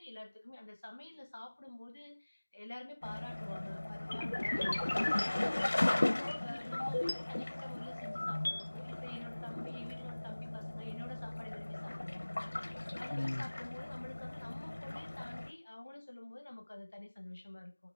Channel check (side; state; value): both; inverted; correlation -1.00